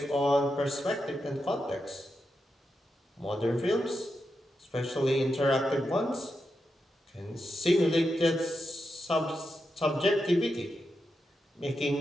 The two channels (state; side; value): normal; both; correlation 0.87